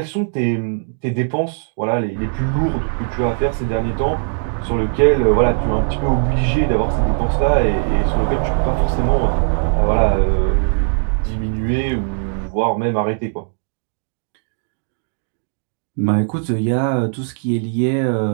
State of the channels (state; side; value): silent; left; digital silence